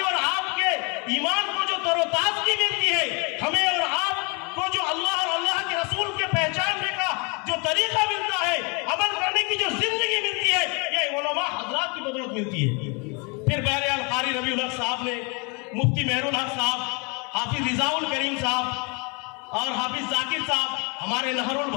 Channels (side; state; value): right; quieter; 32.1 dB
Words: اور آپ کے ایمان کو جو تر و تازگی ملتی ہے, ہمیں اور آپ کو جو اللہ اور اللہ کے رسول کے پہچاننے کا جو طریقہ ملتا ہے, عمل کرنے کی جو زندگی ملتی ہے, یہ علماء حضرات کی بدولت ملتی ہے. پھر بہرحال قاری ربیع الحق صاحب نے, مفتی مہر الحق صاحب, حافظ رضا الکریم صاحب اور حافظ ذاکر صاحب, ہمارے نہر